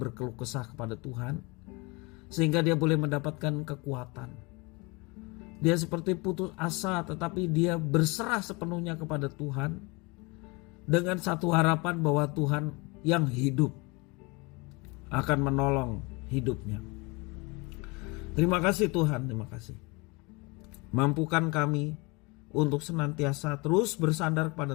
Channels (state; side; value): quieter; right; 27.4 dB